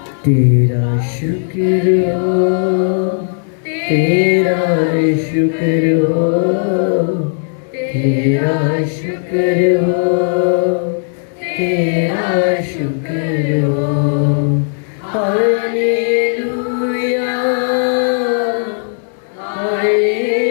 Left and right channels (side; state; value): right; silent; 70 dB below the other